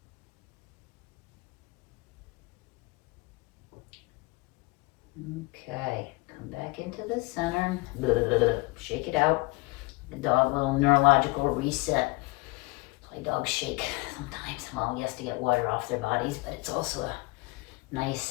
Okay, come back into the center. Shake it out. The dog, little neurological reset. That's why dogs shake sometimes. Well, yes, to get water off their bodies, but it's also a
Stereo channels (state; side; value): quieter; right; 24.3 dB